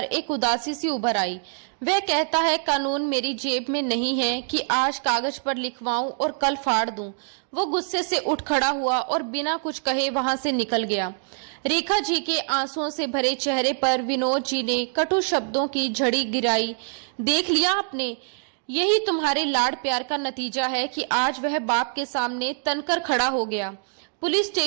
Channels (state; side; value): silent; left; 62 dB below the other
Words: एक उदासी सी उभर आई। वह कहता है, कानून मेरी जेब में नहीं है कि आज कागज पर लिखवाऊं और कल फाड़ दूं। वो गुस्से से उठ खड़ा हुआ और बिना कुछ कहे वहां से निकल गया। रेखा जी के आंसुओं से भरे चेहरे पर विनोद जी ने कटु शब्दों की झड़ी गिराई। देख लिया आपने, यही तुम्हारे लाड़ प्यार का नतीजा है कि आज वह बाप के सामने तनकर खड़ा हो गया। पुलिस